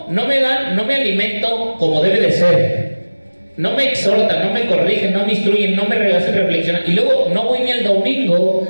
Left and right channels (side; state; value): both; inverted; correlation -1.00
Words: me alimento como debe de ser. No me exhortan, no me corrigen, no me instruyen, no me hacen reflexionar. Y luego no voy ni el domingo.